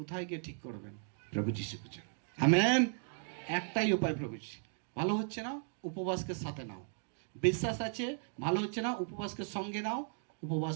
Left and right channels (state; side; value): silent; left; 54 dB below the other